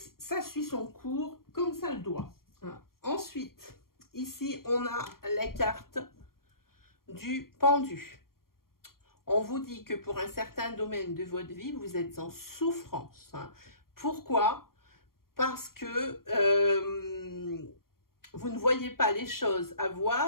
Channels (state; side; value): late; right; 0.93 ms